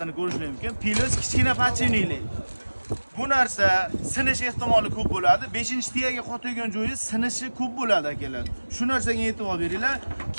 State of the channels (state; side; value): inverted; both; correlation -1.00